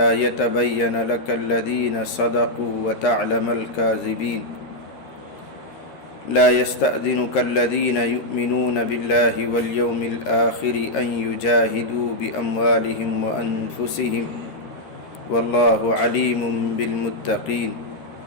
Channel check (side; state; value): right; late; 13 ms